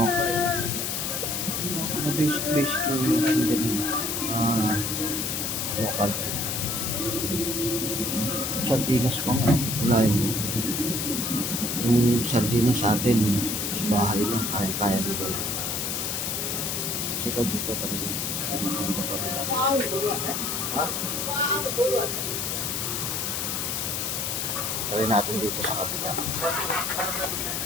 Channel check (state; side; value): noise; left; hiss, 1 dB below the sound